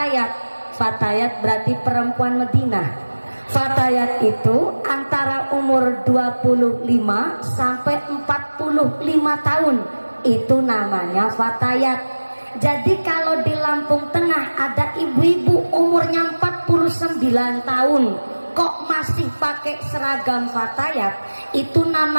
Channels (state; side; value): inverted; both; correlation -1.00